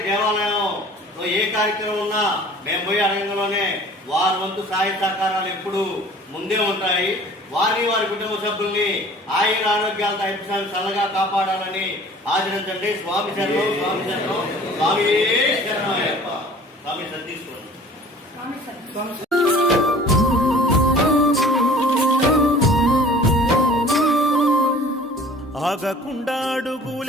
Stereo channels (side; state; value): both; normal; correlation 0.47